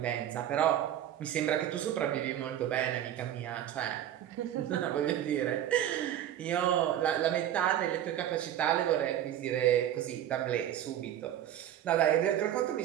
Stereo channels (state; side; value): quieter; left; 11.3 dB